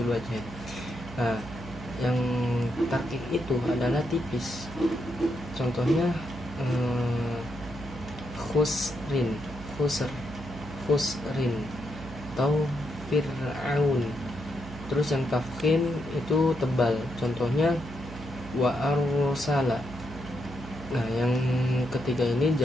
wajh. Nah, yang tarkik itu adalah tipis. Contohnya khusrin, khusrin atau fir'aun. Terus yang tafkhim itu tebal. Contohnya wa arsala. Nah, yang ketiga ini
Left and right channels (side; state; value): right; noise; hum, 13 dB below the sound